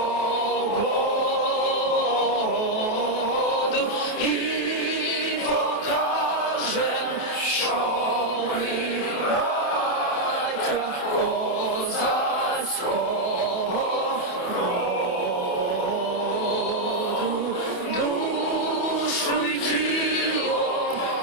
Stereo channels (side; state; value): right; late; 28 ms